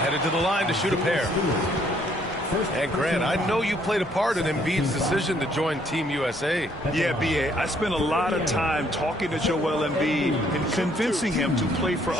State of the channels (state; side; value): normal; both; correlation 0.66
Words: to the line to shoot a pair. And Grant, I know you played a part in Embiid's decision to join Team USA. Yeah, B.A., I spent a lot of time talking to Joel Embiid and convincing him to play for